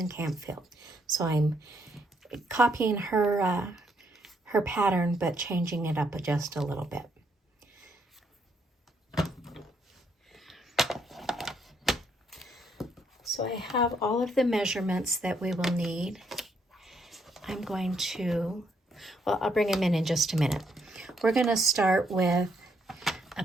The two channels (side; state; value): both; normal; correlation 0.73